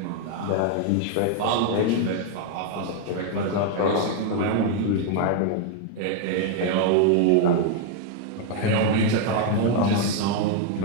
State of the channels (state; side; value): different; both; correlation 0.00